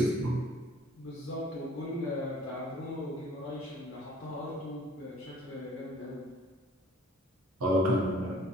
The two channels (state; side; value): normal; both; correlation 0.54